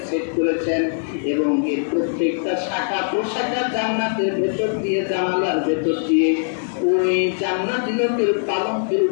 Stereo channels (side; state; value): right; silent; 65 dB below the other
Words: সেট করেছেন, এবং এর প্রত্যেকটা শাখা প্রশাখা জান্নাতের ভেতর দিয়ে, জানালার ভেতর দিয়ে ওই জান্নাতি লোকের পালঙ্কের